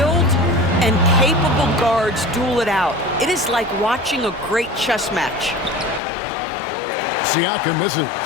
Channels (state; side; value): drops out; right; at 6.0 s